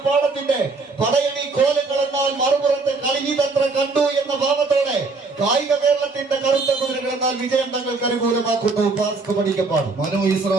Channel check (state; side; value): quieter; left; 3.8 dB